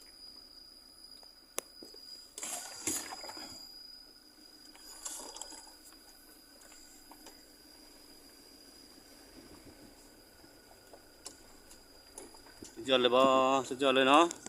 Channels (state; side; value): identical; both; correlation 1.00